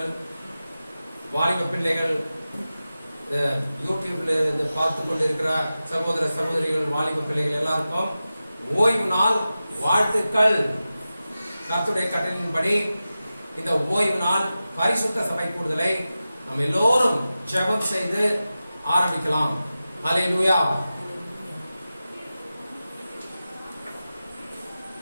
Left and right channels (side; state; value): both; inverted; correlation -0.94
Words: வாலிப பிள்ளைகள், யூடியூப்ல இருந்து பார்த்து கொண்டிருக்கிற சகோதர சகோதரிகள், வாலிப பிள்ளைகள் எல்லாருக்கும் ஓய்வு நாள் வாழ்த்துக்கள். கர்த்தருடைய கட்டளையின்படி இந்த ஓய்வு நாள் பரிசுத்த சபை கூடுதலை நாம் எல்லோரும் ஜெபம் செய்து ஆரம்பிக்கலாம். ஹல்லேலூயா.